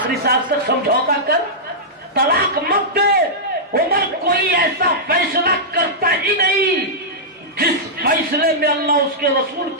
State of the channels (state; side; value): normal; both; correlation -0.11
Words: سانس تک سمجھوتا کر، طلاق مت دے۔ عمر کوئی ایسا فیصلہ کرتا ہی نہیں جس فیصلے میں اللہ اس کے رسول